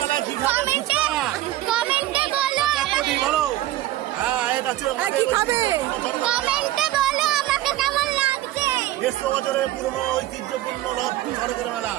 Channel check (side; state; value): left; quieter; 14.8 dB